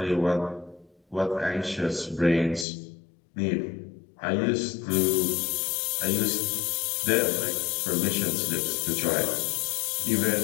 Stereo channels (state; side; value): drops out; right; at 2.7 s